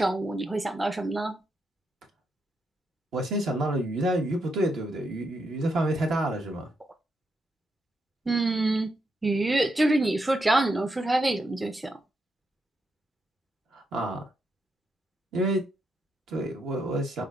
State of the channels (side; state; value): both; normal; correlation 0.82